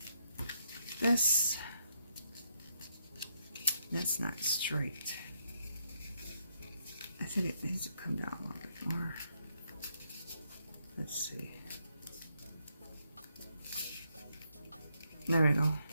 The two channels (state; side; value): inverted; both; correlation -0.76